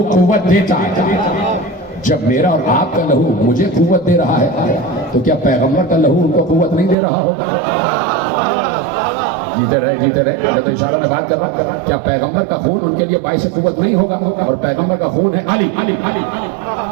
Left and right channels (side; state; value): left; drops out; at 7.0 s